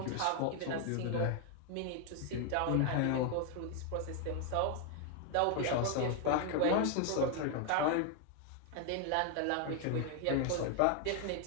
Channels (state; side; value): different; both; correlation 0.01